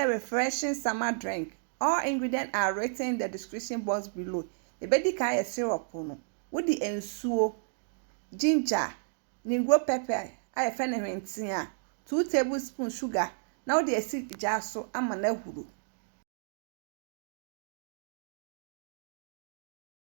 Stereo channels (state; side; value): silent; left; digital silence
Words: refreshing summer drink. All ingredients are written in the description box below. The baby can syrup no. With the ensuo, ginger, nigro pepper. I find a 2 tablespoons sugar. Now the acid jar so I'm an ehuru.